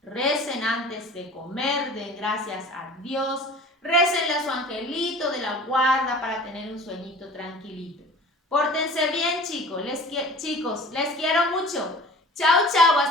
recen antes de comer, den gracias a Dios, récenle a su angelito de la guarda para tener un sueñito tranquilito. Pórtense bien, chicos, les quiero mucho. Chao, chao,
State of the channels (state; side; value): normal; both; correlation 0.43